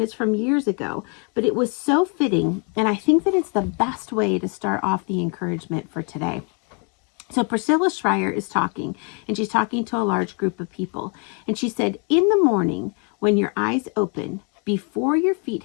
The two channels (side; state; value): right; quieter; 35.6 dB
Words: it's from years ago, but it was so fitting, and I think that it's the best way to start off the encouragement for today. So Priscilla Shirer is talking, and she's talking to a large group of people, and she said, in the morning, when your eyes open, before your feet